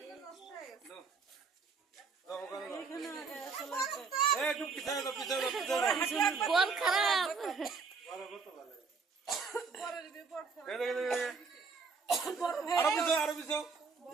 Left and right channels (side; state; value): left; quieter; 4.8 dB